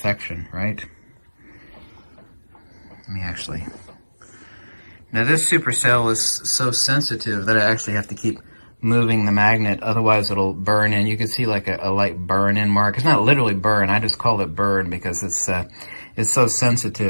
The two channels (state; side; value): inverted; both; correlation -1.00